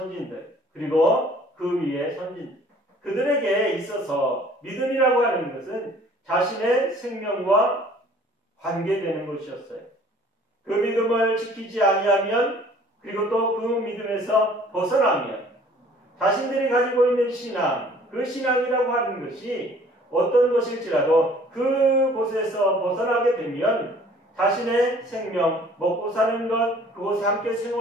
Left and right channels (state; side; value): normal; both; correlation 0.54